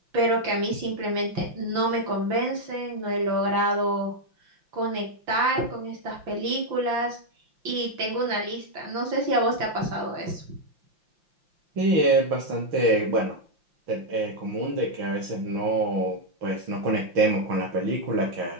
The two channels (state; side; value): late; left; 5.8 ms